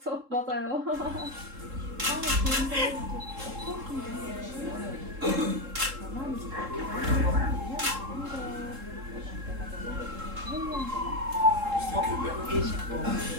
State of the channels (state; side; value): late; left; 3.7 ms